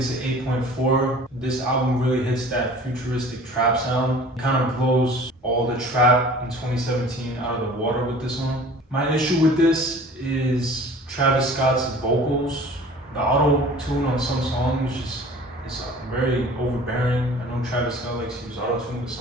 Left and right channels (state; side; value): normal; both; correlation 0.45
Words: an 8.4. This album really hits that futuristic trap sound. It kind of blows all the trap in 2017 out of the water with this one. My issue with this is Travis Scott's vocals. The auto-tune on some songs is very overbearing. I know Travis Scott likes to use auto-tune, but